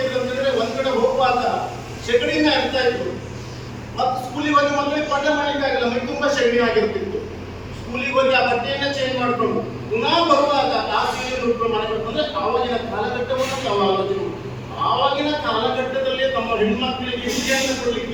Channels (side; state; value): both; identical; correlation 1.00